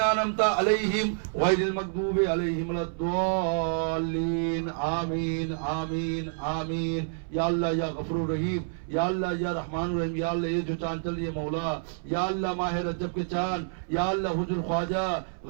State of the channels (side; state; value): left; silent; 59 dB below the other